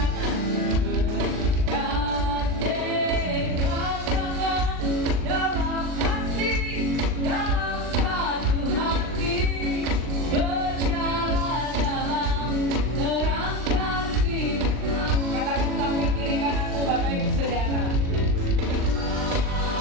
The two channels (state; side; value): late; left; 39 ms